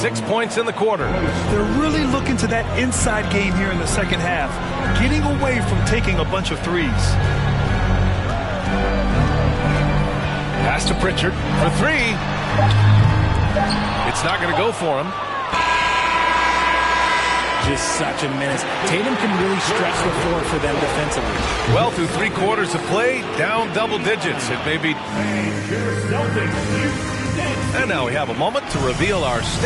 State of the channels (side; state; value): both; identical; correlation 1.00